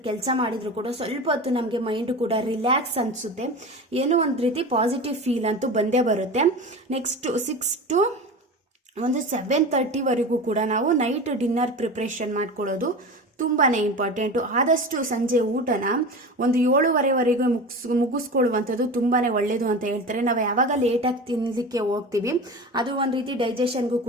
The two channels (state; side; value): normal; both; correlation 0.30